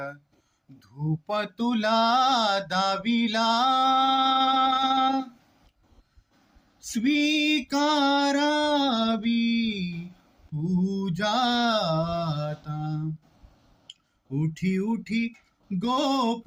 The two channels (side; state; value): both; identical; correlation 1.00